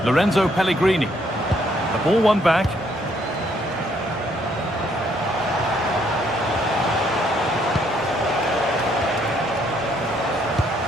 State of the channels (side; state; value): both; normal; correlation 0.69